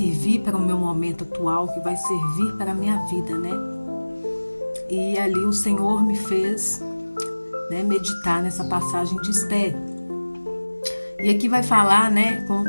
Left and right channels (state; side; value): inverted; both; correlation -1.00